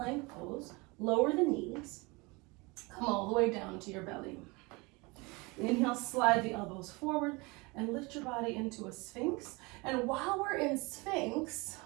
pose, lower the knees, come all the way down to your belly. Inhale, slide the elbows forward and lift your body into a sphinx. And while we're in sphinx,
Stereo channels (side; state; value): left; quieter; 26.1 dB